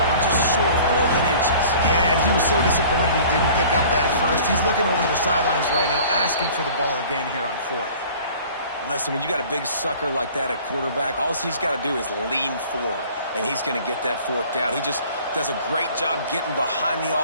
just short 4 inches. Yeah, and he was so disappointed he didn't pick up that first. He's looking over the sidelines right now, asking for the ball again here on 4th. Listen, when you got a big sucker like that at quarterback, all he's got to do is lean forward, and he's going to get that 4th down. He just does a great job getting behind the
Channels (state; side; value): inverted; both; correlation -0.48